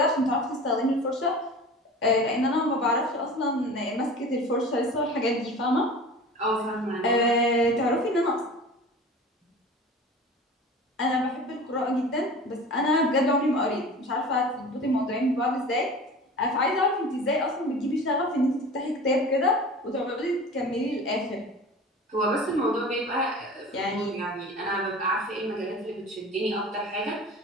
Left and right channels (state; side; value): normal; both; correlation 0.38